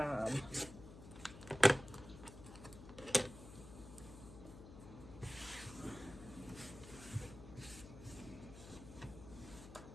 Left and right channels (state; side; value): noise; left; hum, 14 dB below the sound